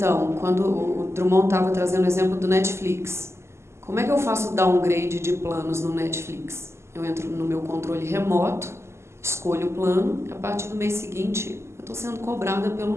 quando o Drummond estava trazendo o exemplo do Netflix, como é que eu faço downgrade de planos no Netflix? Eu entro no meu controle remoto, escolho o plano, e a partir do mês seguinte eu estou sendo cobrada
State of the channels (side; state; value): left; late; 0.13 ms